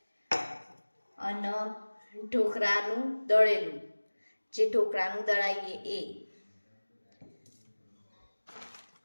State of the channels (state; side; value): inverted; both; correlation -1.00